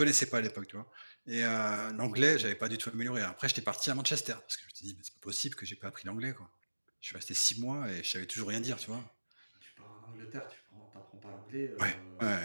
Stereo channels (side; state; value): both; inverted; correlation -1.00